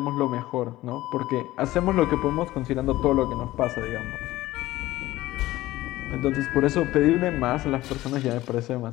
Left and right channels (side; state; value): right; quieter; 16.8 dB